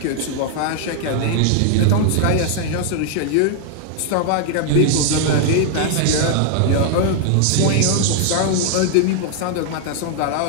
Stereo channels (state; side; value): different; both; correlation 0.00